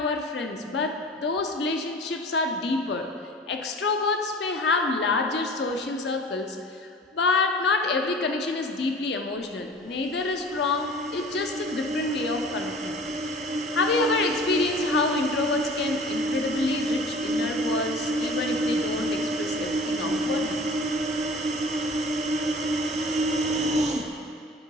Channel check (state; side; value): normal; both; correlation 0.43